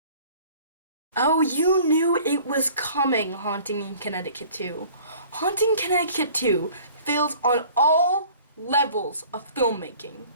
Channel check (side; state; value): both; inverted; correlation -0.50